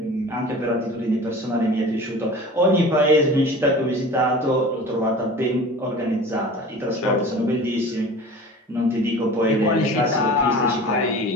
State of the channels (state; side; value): normal; both; correlation 0.39